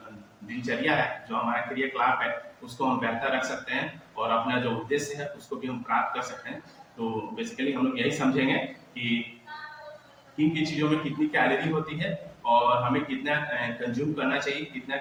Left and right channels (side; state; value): both; identical; correlation 1.00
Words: दिनचर्या है, जो हमारा क्रियाकलाप है, उसको हम बेहतर रख सकते हैं और अपना जो उद्देश्य है उसको भी हम प्राप्त कर सकते हैं। तो बेसिकली हम लोग यही समझेंगे कि किन किन चीज़ों में कितनी कैलोरी होती है और हमें कितना कंज्यूम करना चाहिए, कितना